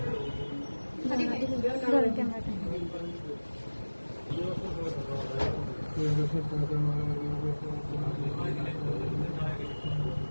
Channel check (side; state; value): both; inverted; correlation -1.00